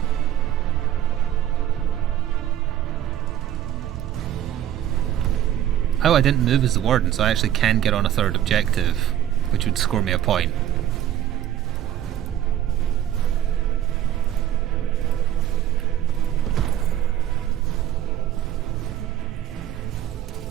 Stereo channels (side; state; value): left; quieter; 11.4 dB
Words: Oh, I didn't move as the warden, so I actually can get on a third objective, which would score me a point.